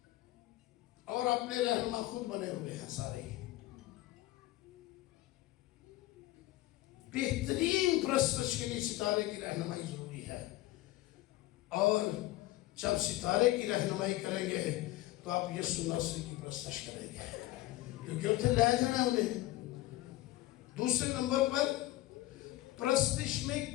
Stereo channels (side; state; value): right; quieter; 17.1 dB